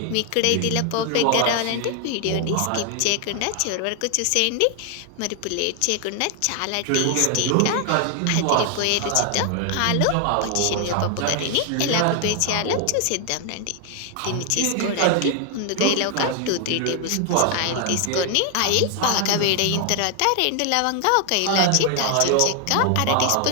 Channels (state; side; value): different; both; correlation 0.00